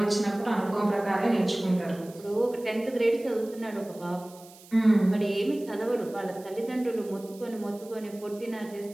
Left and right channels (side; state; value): right; noise; hiss, 22 dB below the sound